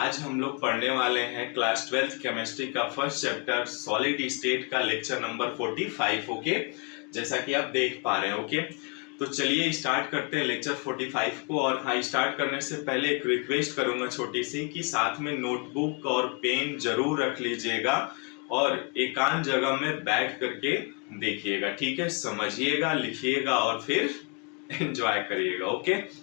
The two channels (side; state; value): right; quieter; 31.7 dB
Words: हम लोग पढ़ने वाले हैं क्लास 12th केमिस्ट्री का फर्स्ट चैप्टर सॉलिड स्टेट का लेक्चर नंबर 45। ओके, जैसा कि आप देख पा रहे हैं। ओके, तो चलिए स्टार्ट करते हैं लेक्चर 45 को। और हाँ, स्टार्ट करने से पहले एक रिक्वेस्ट करूंगा छोटी सी कि साथ में नोटबुक और पेन जरूर रख लीजिएगा और एकांत जगह में बैठ करके देखिएगा। ठीक है, समझिएगा, लिखिएगा और फिर एंजॉय करिएगा। ओके,